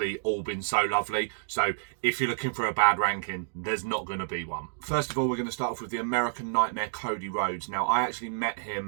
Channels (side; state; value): left; silent; digital silence